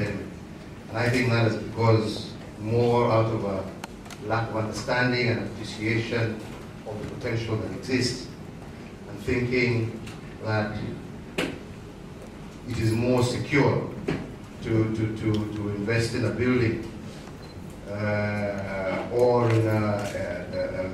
And I think that is because more out of a lack of understanding and appreciation of the potential that exists, and thinking that it is more secure to invest in a building or in a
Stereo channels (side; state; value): both; identical; correlation 1.00